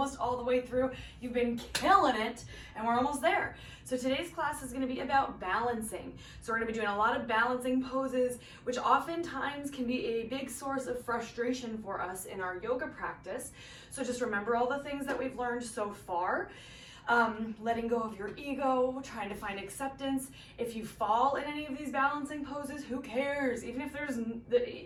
all the way through. You've been killing it and we're almost there. So today's class is going to be about balancing. So we're going to be doing a lot of balancing poses, which oftentimes can be a big source of frustration for us in our yoga practice. So just remember all the things that we've learned so far. Letting go of your ego, trying to find acceptance. If you fall in any of these balancing poses, who cares? Even if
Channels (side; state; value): both; identical; correlation 1.00